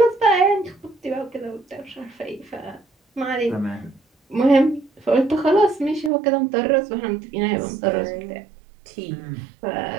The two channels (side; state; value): left; drops out; at 6.1 s